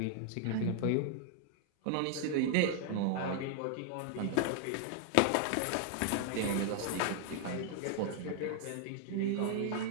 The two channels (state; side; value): different; both; correlation 0.00